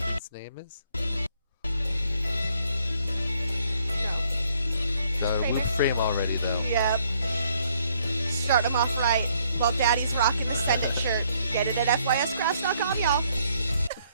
name is? Got a loop frame already though. Yep. Start them off right. While Daddy's rocking the Send It shirt. Get it at FYScraps.com, y'all.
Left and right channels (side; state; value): both; inverted; correlation -0.68